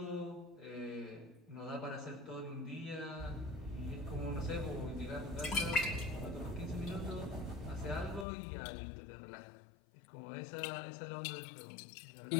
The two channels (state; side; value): drops out; right; at 8.2 s